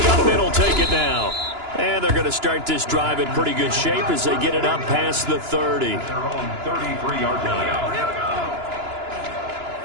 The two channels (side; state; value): left; late; 2.9 ms